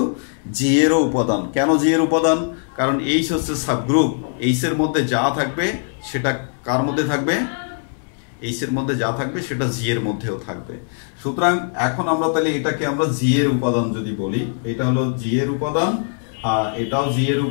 জি এরও উপাদান। কেন জি এর উপাদান? কারণ এইচ হচ্ছে সাবগ্রুপ, এইচ এর মধ্যে যা থাকবে সেটা কার মধ্যে থাকবে? এইচ এর মধ্যে যা থাকবে সেটা জি এর মধ্যেও থাকবে। সুতরাং এখন আমরা তাহলে এটাকে আমরা জি এর উপাদান যদি বলি, এটা হলো জি এর উপাদান, আর এটাও জি এর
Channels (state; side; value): silent; right; digital silence